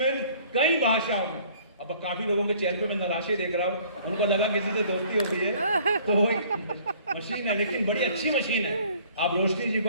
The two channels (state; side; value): inverted; both; correlation -0.55